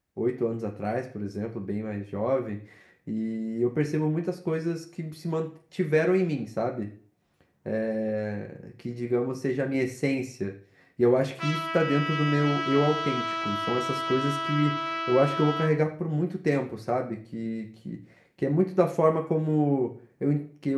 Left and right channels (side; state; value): both; identical; correlation 1.00